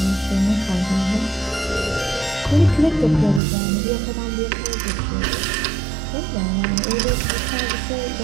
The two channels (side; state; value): left; drops out; at 3.4 s